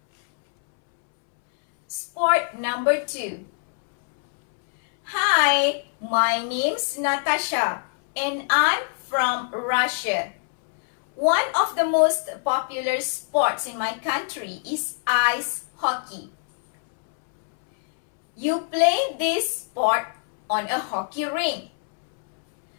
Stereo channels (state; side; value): silent; right; 63 dB below the other